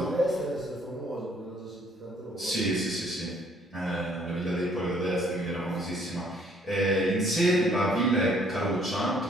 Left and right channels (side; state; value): both; normal; correlation 0.62